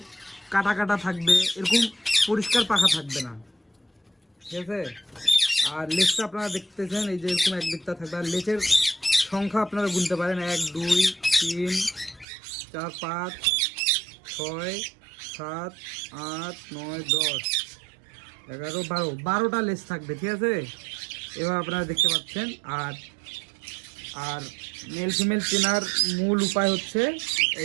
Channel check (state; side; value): drops out; left; at 12.2 s